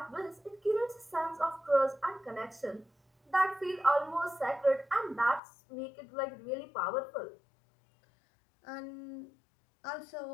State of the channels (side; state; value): right; drops out; at 5.4 s